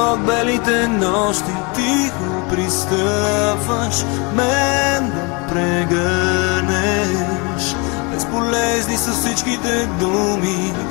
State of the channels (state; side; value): quieter; right; 30.7 dB